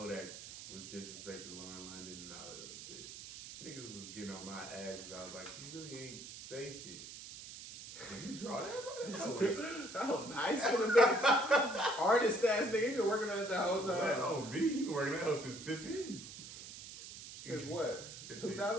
was disrespecting Lauren London and all that other shit. Niggas was getting on my ass, and I was like, you really ain't say shit. draw that, bro? Oh, nice for the bitch. Artist ass nigga, you been working on it the whole Like, time. oh, me? You been working that hoe since 15. Since what? 15.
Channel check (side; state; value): right; noise; hiss, 12 dB below the sound